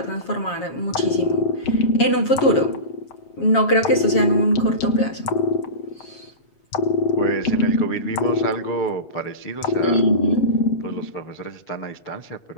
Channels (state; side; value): late; right; 7.3 ms